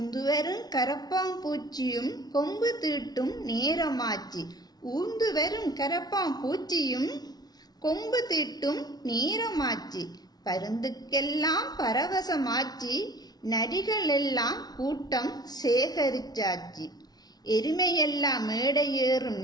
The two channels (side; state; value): right; late; 0.19 ms